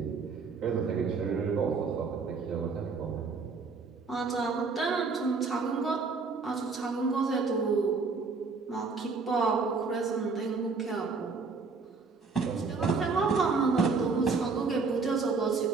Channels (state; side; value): quieter; left; 4.6 dB